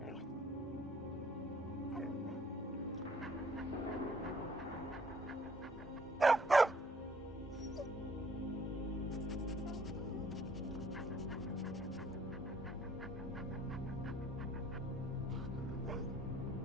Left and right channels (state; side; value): normal; both; correlation 0.60